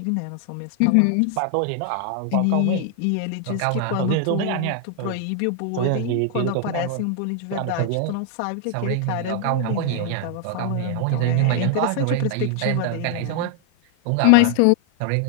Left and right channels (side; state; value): both; different; correlation 0.00